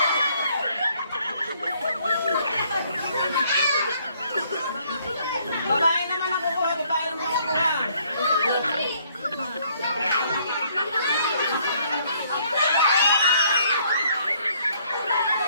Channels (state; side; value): inverted; both; correlation -0.65